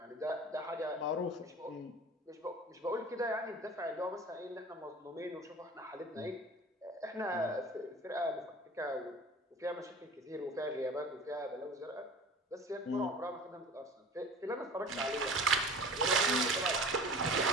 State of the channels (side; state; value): both; normal; correlation 0.40